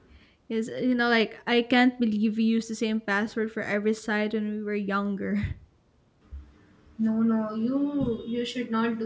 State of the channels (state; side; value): identical; both; correlation 1.00